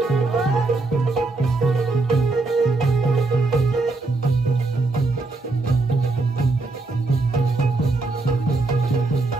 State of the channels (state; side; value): quieter; left; 3.4 dB